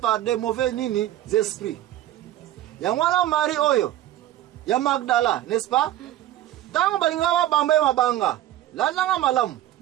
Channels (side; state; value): left; quieter; 13.5 dB